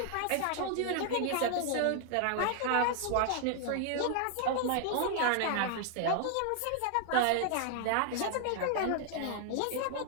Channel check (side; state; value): both; different; correlation 0.00